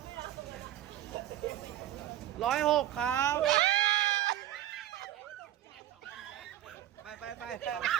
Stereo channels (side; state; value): left; quieter; 12.8 dB